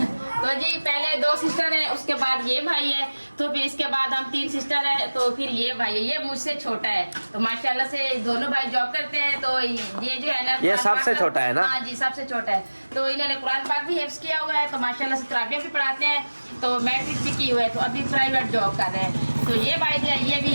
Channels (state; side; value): inverted; both; correlation -1.00